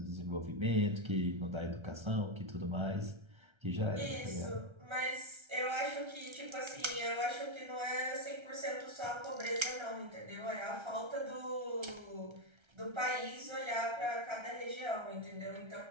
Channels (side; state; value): left; late; 1.3 ms